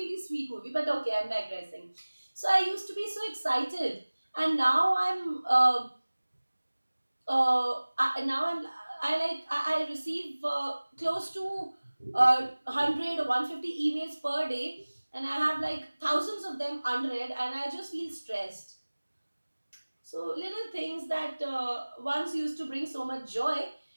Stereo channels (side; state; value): both; inverted; correlation -1.00